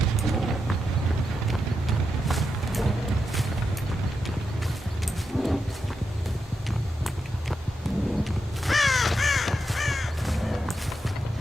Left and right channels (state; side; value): normal; both; correlation 0.86